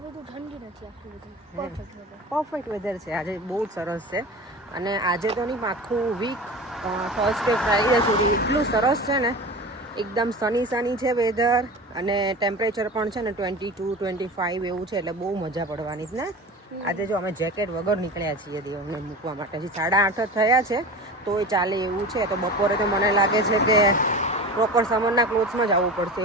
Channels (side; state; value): both; normal; correlation 0.32